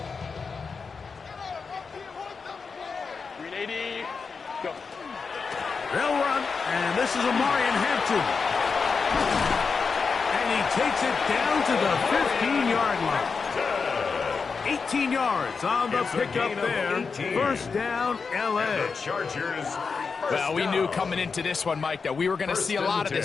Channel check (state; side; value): quieter; right; 5.1 dB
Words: 380, go. They'll run, and this is Amarian Hampton. And he takes it down to the 15-yard line. 18 yards on the pickup there. First down, L.A. Chargers. Well, we knew coming into this one, Mike, that we were going to see a lot of